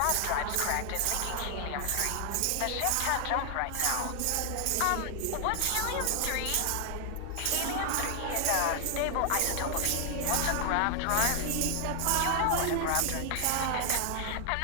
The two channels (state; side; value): different; both; correlation 0.00